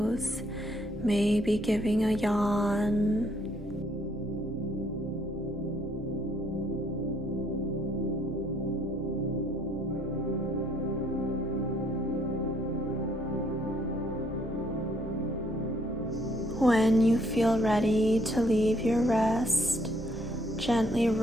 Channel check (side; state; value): both; normal; correlation 0.67